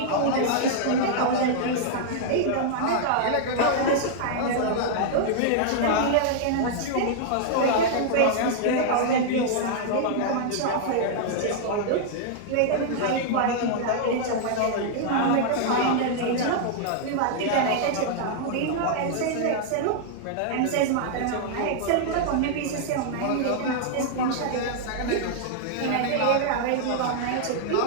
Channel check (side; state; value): both; different; correlation -0.01